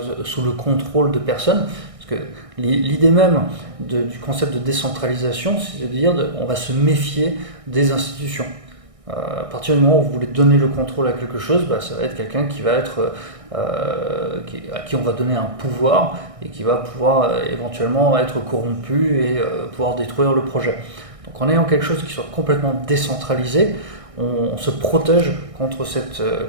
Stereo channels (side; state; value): left; late; 1.6 ms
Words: sous le contrôle de personnes. Parce que l'idée même du concept de décentralisation, c'est de dire on va se méfier des institutions. À partir du moment où vous voulez donner le contrôle à quelque chose, ça va être quelqu'un qui va être à qui on va donner un pouvoir et qui va pouvoir éventuellement être corrompu et pouvoir détruire le projet. Donc en ayant quelque chose qui soit complètement décentralisé, on se protège contre